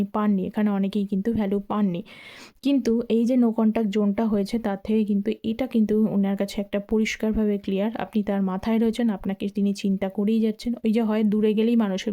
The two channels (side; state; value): both; identical; correlation 1.00